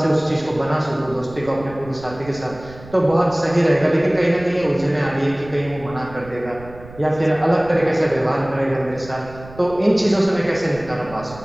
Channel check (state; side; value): noise; right; rumble, 18 dB below the sound